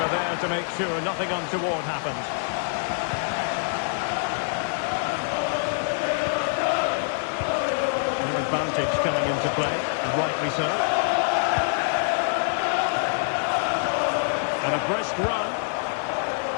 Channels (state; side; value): silent; right; 61 dB below the other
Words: there to make sure nothing untoward happened. No advantage coming into play, and rightly so. And a brisk run.